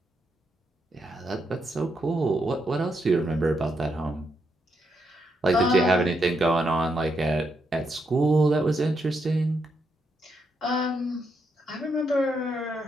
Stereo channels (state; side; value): normal; both; correlation 0.80